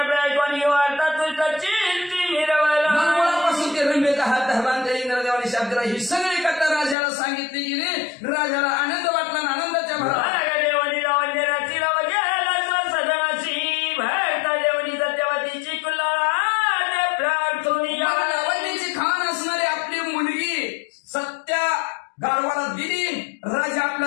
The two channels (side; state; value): right; drops out; at 7.0 s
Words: कोणी वार्ता तुझ्या चिंती मिरवला. मुळापासून ते रंबेचा हात धरला त्या इंद्रदेवाने शाप दिला. ही सगळी कथा राजाला सांगितली गेली. राजाला आनंद वाटला आणि आनंदाच्या भरात देवनी लावण्य रचिला गेला सदनाची भरता देवनी सत्यवतीची कुल्लाळा प्रार्थुनी लावण्याची खाण असणारी आपली मुलगी सत्या गाढवाला दिली. राजा